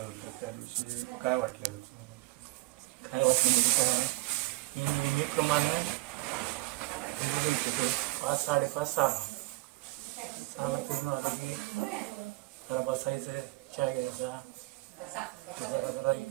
होतं त्या दिवशी काय वाटलं? काय वाटलं म्हणजे काय, मी नेहमीप्रमाणे 5-5:30 6ला पूर्ण आलं की जरा बसायचं, चहा घ्यायचा, जरा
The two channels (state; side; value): quieter; left; 20.6 dB